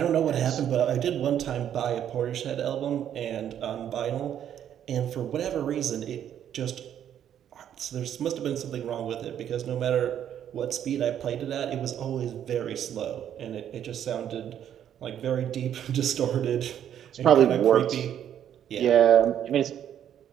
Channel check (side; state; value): left; quieter; 9.9 dB